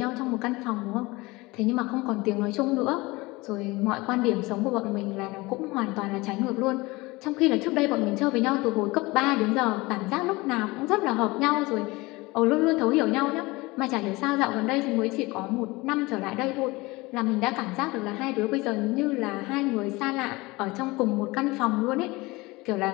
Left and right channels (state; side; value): quieter; right; 22.5 dB